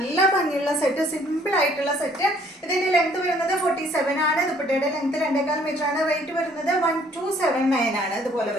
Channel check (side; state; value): both; normal; correlation 0.61